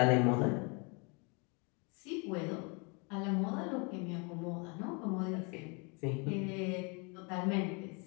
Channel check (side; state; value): right; quieter; 32.5 dB